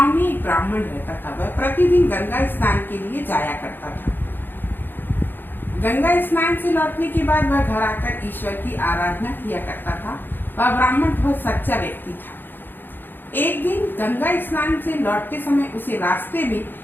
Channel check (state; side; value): late; right; 0.095 ms